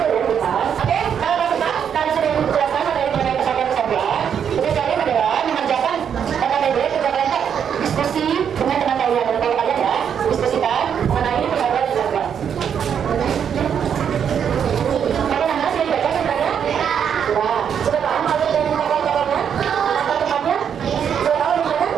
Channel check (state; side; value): quieter; left; 8.0 dB